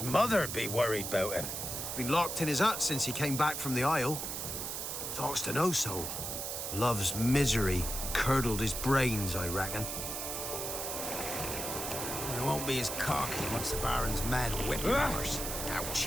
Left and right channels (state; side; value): noise; right; hiss, 4 dB below the sound